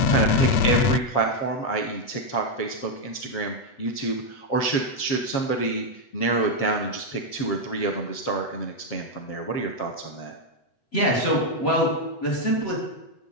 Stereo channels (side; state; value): right; late; 8.1 ms